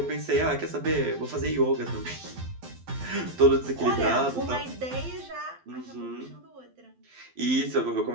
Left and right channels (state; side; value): late; left; 12 ms